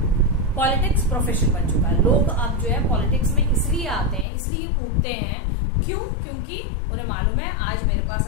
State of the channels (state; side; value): drops out; right; at 4.2 s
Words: पॉलिटिक्स प्रोफेशन बन चुका है। लोग अब जो है पॉलिटिक्स में इसलिए आते हैं, इसलिए कूदते हैं, क्यों? क्योंकि उन्हें मालूम है आज मेरे पास